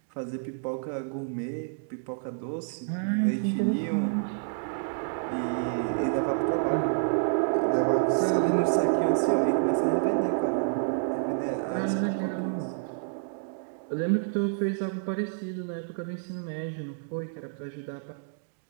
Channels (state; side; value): silent; left; digital silence